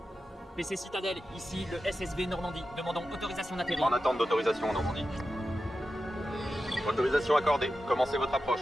PC Citadelle, ici le SSV Normandie. Demandons autorisation d'atterrir. En attente d'autorisation en Normandie. Autorisation accordée. Commencez votre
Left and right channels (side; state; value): both; normal; correlation 0.91